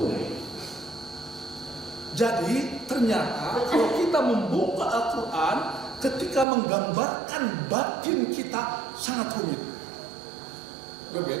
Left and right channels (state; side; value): drops out; left; at 6.5 s